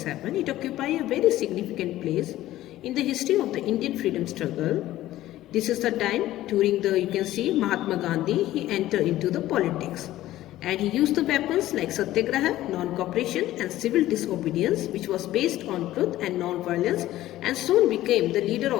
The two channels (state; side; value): quieter; right; 14.8 dB